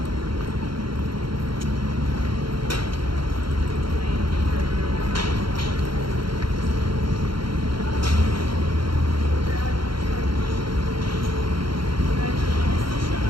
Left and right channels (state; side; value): late; left; 0.73 ms